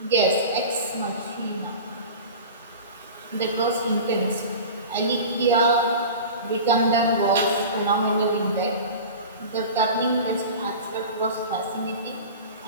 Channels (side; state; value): both; inverted; correlation -0.34